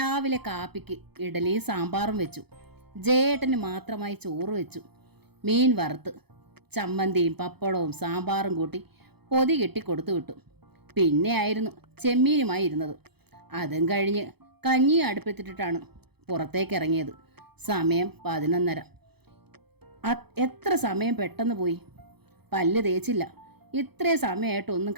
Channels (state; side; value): late; left; 0.97 ms